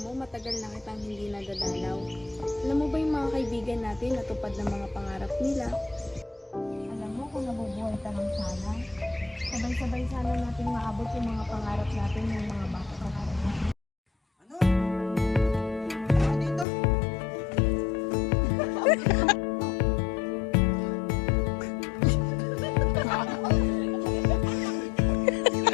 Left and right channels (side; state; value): right; drops out; at 16.7 s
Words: mo, matagal na kitang hindi nadadalaw. Alam mo ba yung mga kaibigan natin natupad ng mga pangarap nila? Alam mo kung nabubuhay ka lang sana, sabay-sabay sana natin maabot yung mga pangarap natin ng mga bata pa natin. Ano? Ano dito?